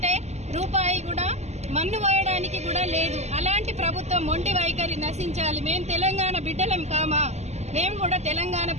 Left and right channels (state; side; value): late; left; 0.32 ms